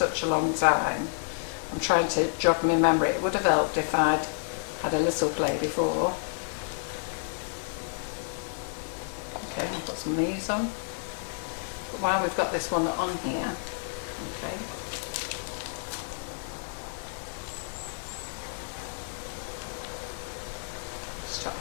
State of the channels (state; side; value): silent; right; digital silence